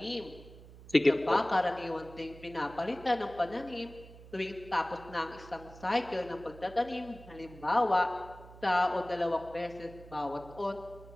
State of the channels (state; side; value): noise; right; hum, 18 dB below the sound